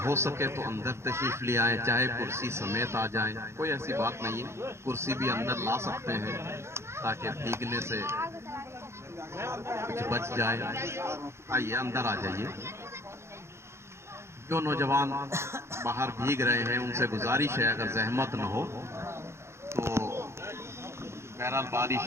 ہو سکے تو اندر تشریف لے آئیں، چاہے کرسی سمیت آ جائیں، کوئی ایسی بات نہیں ہے، کرسی بھی اندر لا سکتے ہیں تاکہ بھیگنے سے کچھ بچ جائے۔ آئیے اندر آ جائیے۔ جو نوجوان باہر بھیگ رہے ہیں ان سے گزارش ہے اگر زحمت نہ ہو تو بہرحال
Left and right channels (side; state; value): left; late; 0.13 ms